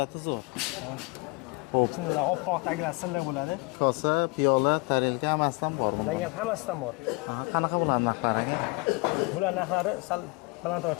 zo'r. Xo'p, chinnilar oppoq tagilar silliq bo'ladi. Kosa, piyola, tarelka hammasidan bor. Lagan hammasidan bor. Qanaqa bular narxlari aka? Bular narxlari sal balandroq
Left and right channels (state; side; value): quieter; right; 26.8 dB